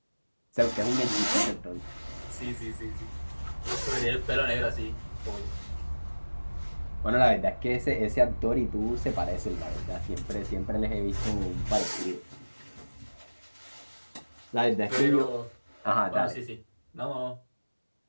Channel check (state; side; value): inverted; both; correlation -1.00